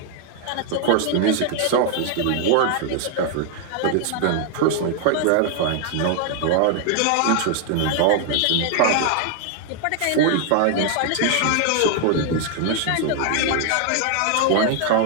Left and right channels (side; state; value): both; different; correlation 0.00